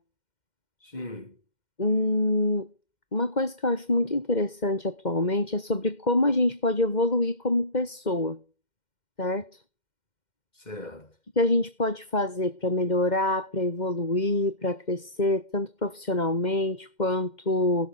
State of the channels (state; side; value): late; right; 2.1 ms